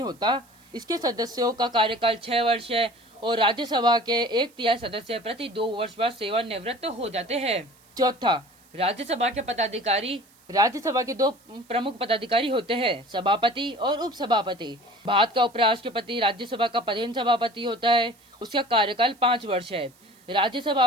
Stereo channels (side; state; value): right; noise; hiss, 30 dB below the sound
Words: होता। इसके सदस्यों का कार्यकाल 6 वर्ष है और राज्यसभा के 1/3 सदस्य प्रति 2 वर्ष बाद सेवानिवृत्त हो जाते हैं। चौथा, राज्यसभा के पदाधिकारी। राज्यसभा के 2 प्रमुख पदाधिकारी होते हैं, सभापति और उपसभापति। भारत का उपराष्ट्रपति राज्यसभा का प्रधान सभापति होता है। उसका कार्यकाल 5 वर्ष है। राज्यसभा